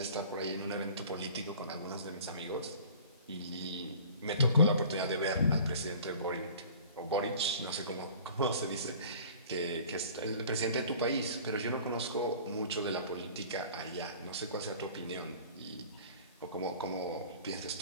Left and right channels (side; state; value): both; inverted; correlation -0.46